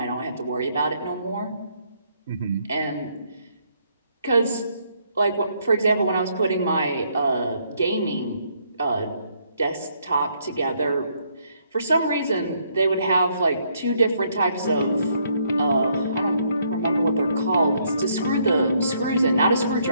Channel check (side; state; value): both; inverted; correlation -0.71